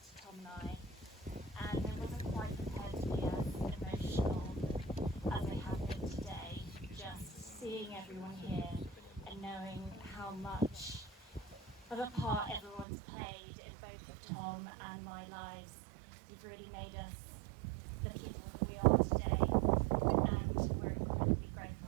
Tom and I, and I wasn't quite prepared to be as emotional as I have been today, just seeing everyone here and knowing how much of a part everyone's played in both of Tom and my lives. You've really made us the people that we are today, and we're incredibly grateful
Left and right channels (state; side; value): drops out; left; at 12.9 s